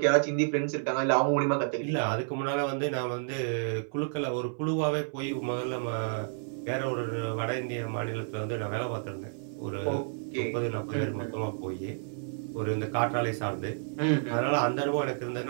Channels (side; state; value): left; silent; 58 dB below the other